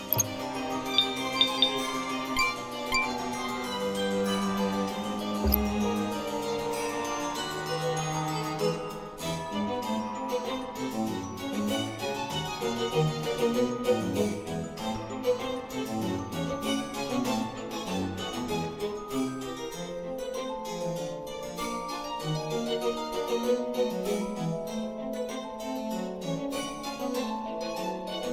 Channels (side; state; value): both; identical; correlation 1.00